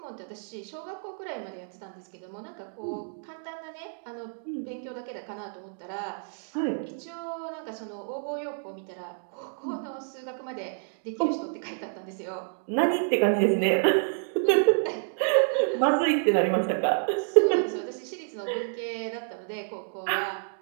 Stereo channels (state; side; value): silent; left; digital silence